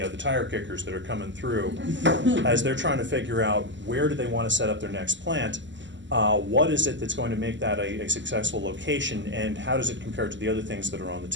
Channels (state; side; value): late; left; 0.54 ms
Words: tire kickers that are coming through as they're trying to figure out where do they want to set up their next plant. What is it that's going to make that a successful location, and how does it compare to the other things that are on the